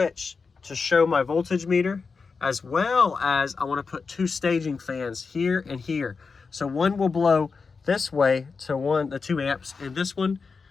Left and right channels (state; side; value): quieter; right; 4.9 dB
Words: to show my voltage meter, as well as I want to put 2 staging fans here and here. So one will blow this way to the 2 amps, and this one